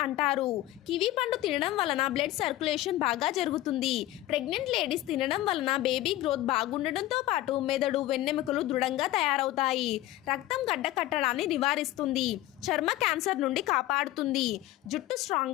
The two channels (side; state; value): right; quieter; 15.8 dB